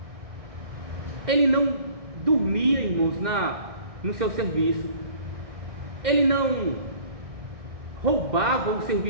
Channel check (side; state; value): left; late; 2.1 ms